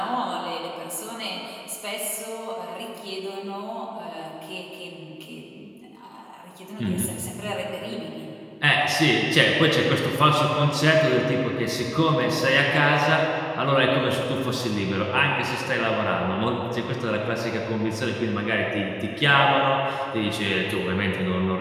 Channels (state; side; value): identical; both; correlation 1.00